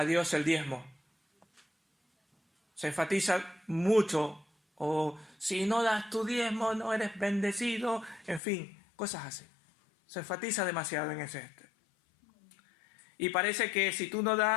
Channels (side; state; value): right; drops out; at 8.4 s